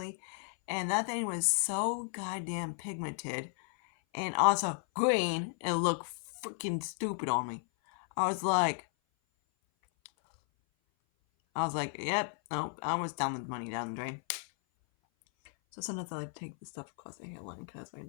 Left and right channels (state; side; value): silent; right; 55 dB below the other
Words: And that thing was so goddamn pigmented and also green and looked freaking stupid on me. I was like, yep, no, I was down the money down the drain. So sometimes I like to take the stuff across the hairline because why